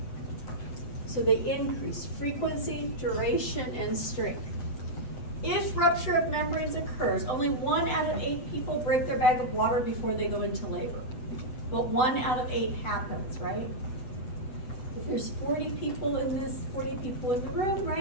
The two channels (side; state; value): right; late; 8.1 ms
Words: So they increase frequency, duration, and strength. If rupture of membranes occurs, only 1 out of 8 people break their bag of water before they go into labor. But 1 out of 8 happens, right? If there's 40 people in the room,